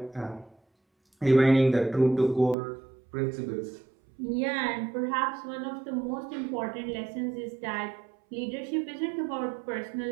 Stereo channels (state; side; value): drops out; left; at 2.6 s